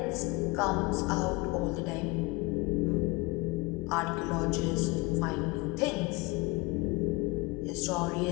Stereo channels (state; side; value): quieter; right; 24.8 dB